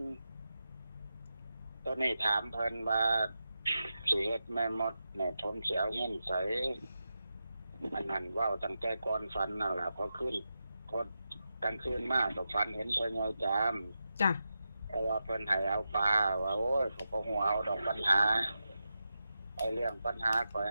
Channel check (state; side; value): inverted; both; correlation -0.89